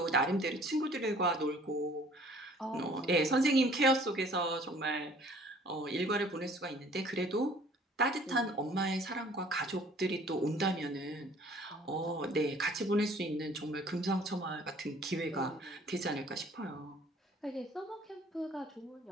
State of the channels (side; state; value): both; normal; correlation 0.54